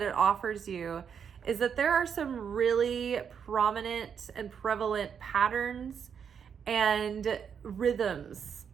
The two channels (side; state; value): left; quieter; 7.3 dB